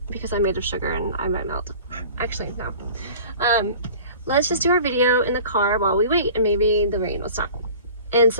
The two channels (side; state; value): both; inverted; correlation -0.43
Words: because I'm made of sugar and I might melt. Actually, no. Let's just do our video in the car while we wait and maybe the rain will stop. And